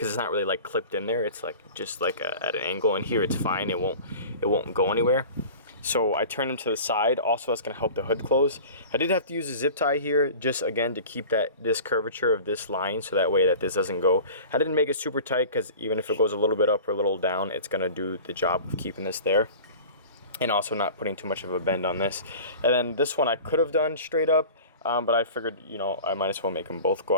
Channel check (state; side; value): inverted; both; correlation -0.39